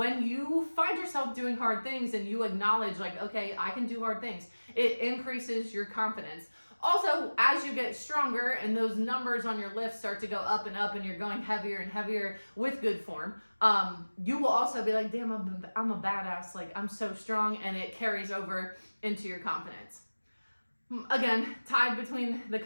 you find yourself doing hard things and you acknowledge okay, I can do hard things, it increases your confidence. Also, as you get stronger and those numbers on your lifts start to go up and up, and you're going heavier and heavier with good form, you will also be damn, I'm a badass, I'm so strong, and it carries over into your confidence. Again, tied between the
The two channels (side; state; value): both; inverted; correlation -1.00